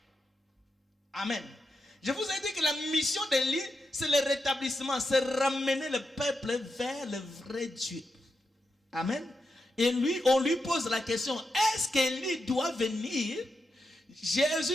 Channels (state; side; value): normal; both; correlation 0.85